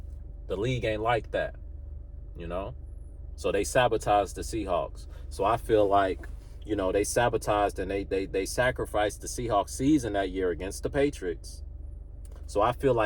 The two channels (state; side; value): identical; both; correlation 1.00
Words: The league ain't like that, you know? So they sabotaged the Seahawks. So I feel like, you know, they sabotaged and they sacrificed the Seahawks season that year against the Patriots. So I feel